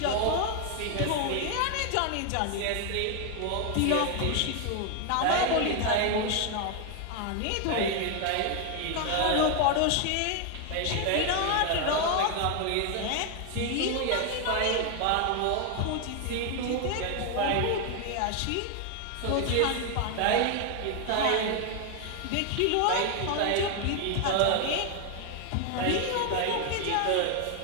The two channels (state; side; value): different; both; correlation 0.01